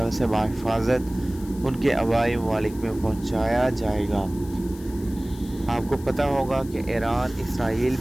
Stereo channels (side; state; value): left; noise; hiss, 21 dB below the sound